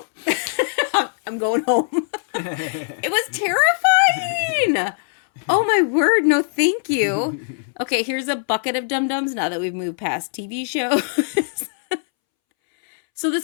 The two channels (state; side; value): silent; right; 65 dB below the other